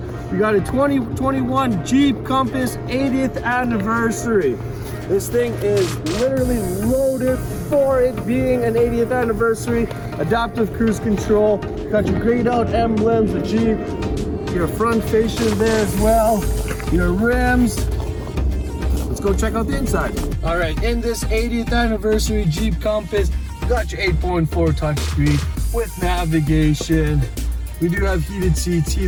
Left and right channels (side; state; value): both; identical; correlation 1.00